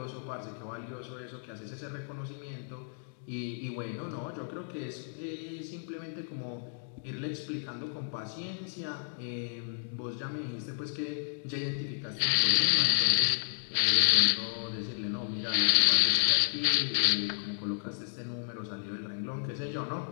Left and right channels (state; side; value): silent; right; digital silence